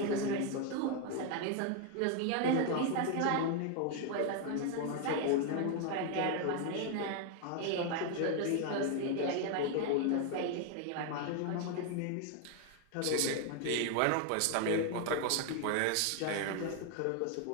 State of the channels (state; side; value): different; both; correlation 0.01